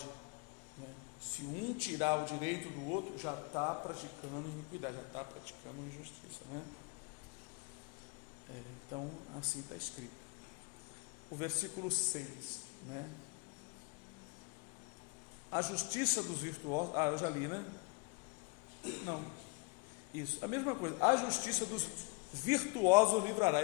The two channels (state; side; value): quieter; right; 29.3 dB